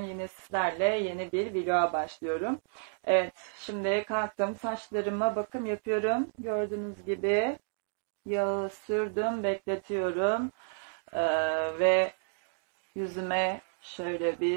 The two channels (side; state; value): left; silent; digital silence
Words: yine sizlerle yeni bir vloga başlıyorum. Evet, şimdi kalktım, saçlarıma bakım yapıyorum. Gördüğünüz gibi yağı sürdüm, bekletiyorum. Ve yüzüme şöyle